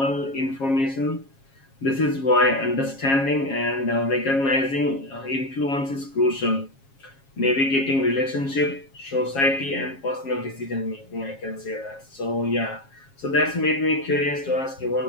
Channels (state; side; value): late; right; 7.4 ms